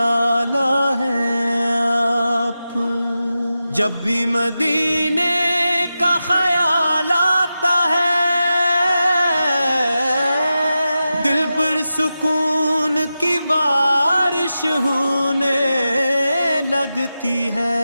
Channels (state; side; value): inverted; both; correlation -0.92